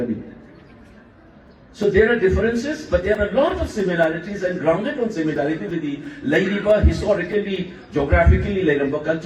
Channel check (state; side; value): identical; both; correlation 1.00